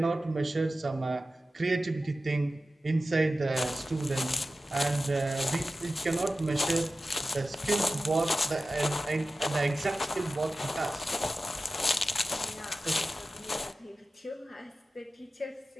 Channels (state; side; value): normal; both; correlation 0.94